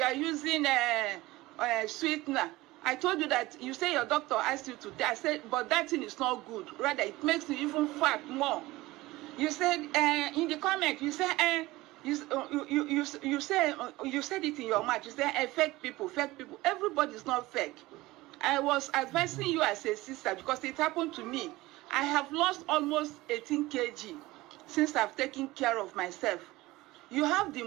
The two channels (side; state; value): left; quieter; 19.3 dB